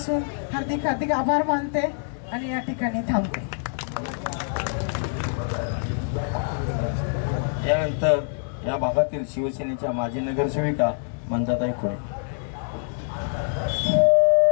हार्दिक हार्दिक आभार मानते आणि या ठिकाणी थांबते. यानंतर या भागातील शिवसेनेच्या माजी नगरसेविका मंजाताई खुळे.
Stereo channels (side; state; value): right; silent; digital silence